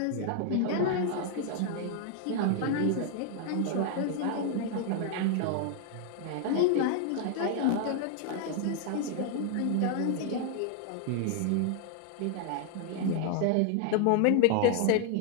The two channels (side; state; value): both; different; correlation 0.00